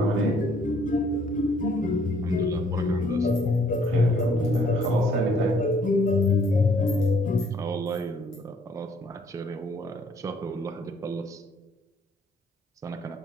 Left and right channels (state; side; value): normal; both; correlation 0.63